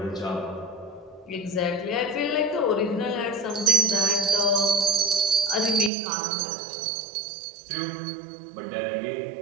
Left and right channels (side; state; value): left; drops out; at 5.9 s